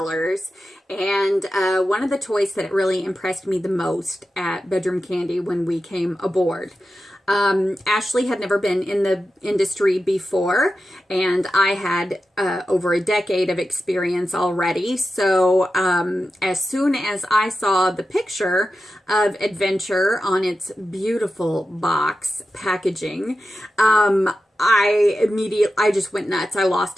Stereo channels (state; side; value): normal; both; correlation 0.91